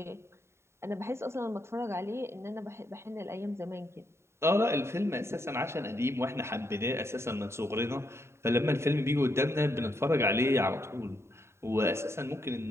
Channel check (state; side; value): late; left; 0.13 ms